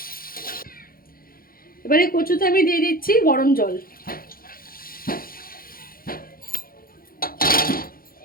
এবারে কচুতে আমি দিয়ে দিচ্ছি গরম জল।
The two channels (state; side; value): late; right; 0.42 ms